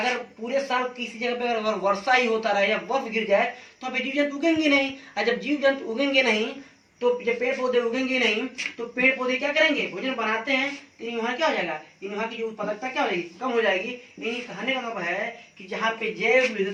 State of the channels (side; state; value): both; identical; correlation 1.00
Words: पूरे साल किसी जगह पे अगर वर्षा ही होता रहे या बर्फ गिर जाए तो यहाँ पे जीव जंतु उगेंगे नहीं, और जब जीव जंतु उगेंगे नहीं तो जब पेड़ पौधे उगेंगे नहीं तो पेड़ पौधे क्या करेंगे, भोजन बनाते हैं, तो वहाँ क्या हो जाएगा, वहाँ की जो उत्पादकता क्या हो जाएगी, कम हो जाएगी। यानी कहने का मतलब है कि जहाँ पे जैव